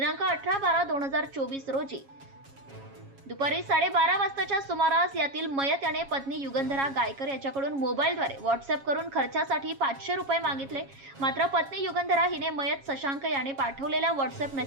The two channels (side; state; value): left; late; 7.3 ms